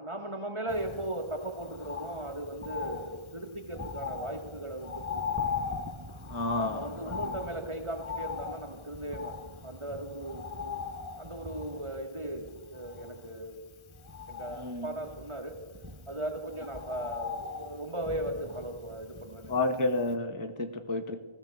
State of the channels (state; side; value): late; left; 1.4 ms